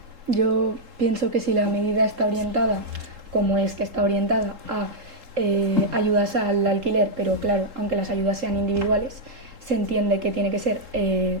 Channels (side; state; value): left; late; 3.7 ms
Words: Yo pienso que si la medida está orientada, como es que está orientada a ayudas al alquiler, pero claro, aunque las ayudas sean individuales, se entiende que tiene que ser